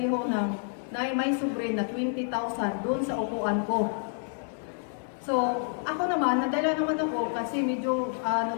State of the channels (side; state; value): right; silent; 56 dB below the other